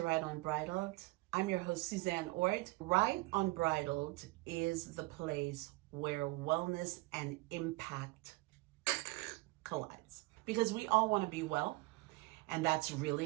Right Unbridled. I'm your host, Suzanne Ort. Right Unbridled is the place where wellness and impact collides. Because we all want to be well, and that's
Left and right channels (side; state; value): left; quieter; 22.7 dB